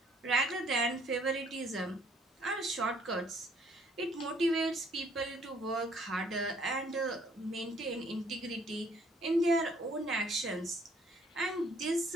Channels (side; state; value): both; normal; correlation 0.62